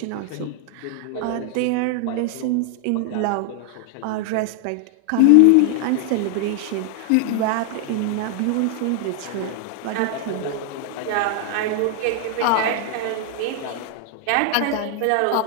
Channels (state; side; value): different; both; correlation 0.00